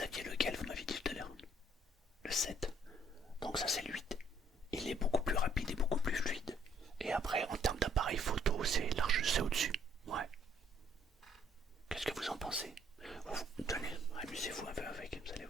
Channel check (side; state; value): both; normal; correlation 0.65